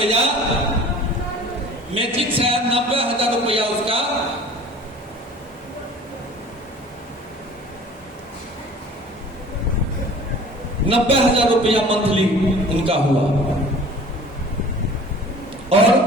मैट्रिक से आया, 90,000 रुपया उसका 90,000 रुपया मंथली उनका हुआ।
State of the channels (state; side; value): normal; both; correlation 0.46